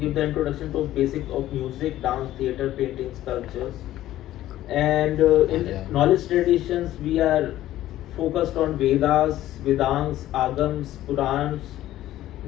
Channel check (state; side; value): quieter; right; 14.0 dB